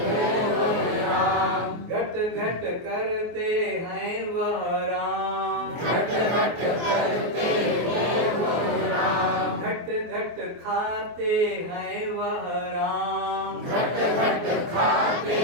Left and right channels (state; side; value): late; left; 24 ms